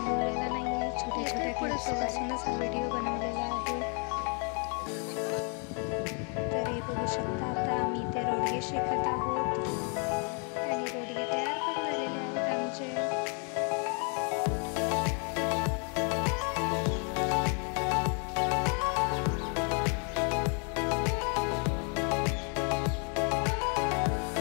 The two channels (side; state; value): right; quieter; 39.0 dB